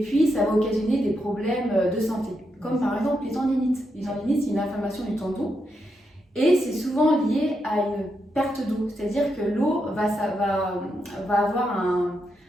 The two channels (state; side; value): normal; both; correlation 0.83